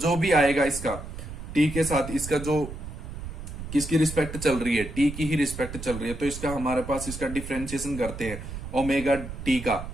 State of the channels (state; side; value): noise; right; rumble, 9 dB below the sound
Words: भी आएगा इसका टी के साथ, इसका जो किसकी रिस्पेक्ट चल रही है, टी की ही रिस्पेक्ट चल रही है, तो इसका हमारे पास इसका डिफरेंशिएशन करते हैं ओमेगा टी का,